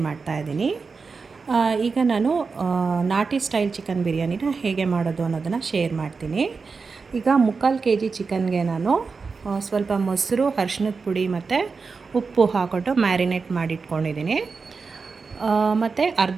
ಮಾಡ್ತಾಯಿದ್ದೀನಿ. ಈಗ ನಾನು ನಾಟಿ ಸ್ಟೈಲ್ ಚಿಕನ್ ಬಿರಿಯಾನಿನ ಹೇಗೆ ಮಾಡೋದು ಅನ್ನೋದನ್ನು ಶೇರ್ ಮಾಡ್ತೀನಿ. ಈಗ 3/4 kg ಚಿಕನ್ಗೆ ನಾನು ಸ್ವಲ್ಪ ಮೊಸರು, ಅರಿಶಿಣದ ಪುಡಿ ಮತ್ತು ಉಪ್ಪು ಹಾಕ್ಬಿಟ್ಟು ಮ್ಯಾರಿನೇಟ್ ಮಾಡಿಟ್ಕೊಂಡಿದ್ದೀನಿ. ಮತ್ತು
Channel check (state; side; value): quieter; left; 4.8 dB